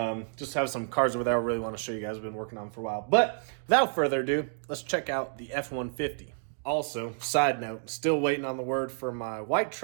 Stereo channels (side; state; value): left; silent; 58 dB below the other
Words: Just have some cars over there I really want to show you guys. I've been working on for a while. But without further ado, let's check out the F-150. Also, side note, still waiting on the word for my white